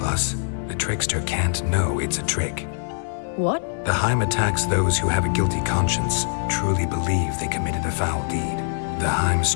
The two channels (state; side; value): silent; right; digital silence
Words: the trickster can't know it's a trick. What? The Heim attacks those who have a guilty conscience, truly believe they committed a foul deed. The Heim